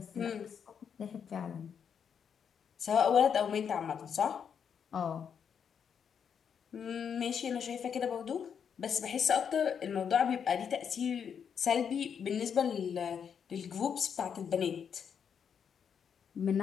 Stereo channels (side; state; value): right; quieter; 7.4 dB